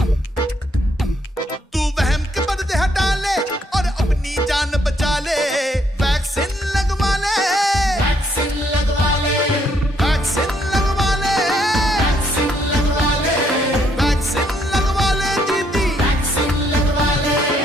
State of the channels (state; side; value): normal; both; correlation 0.71